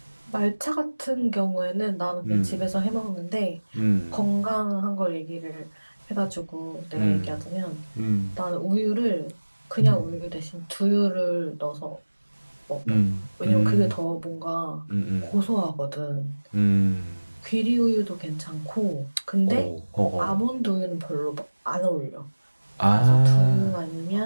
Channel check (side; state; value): both; inverted; correlation -1.00